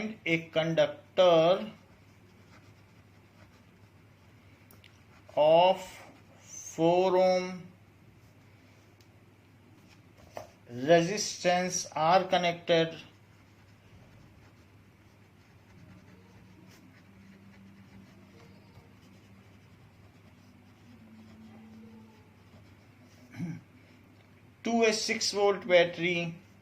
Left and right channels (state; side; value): identical; both; correlation 1.00